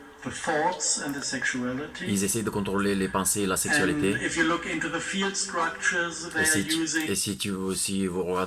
the thoughts and the sexuality. Ils essayent de contrôler les pensées et la And sexualité. if you look into the field structures they Et are si, using, si vous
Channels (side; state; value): both; identical; correlation 1.00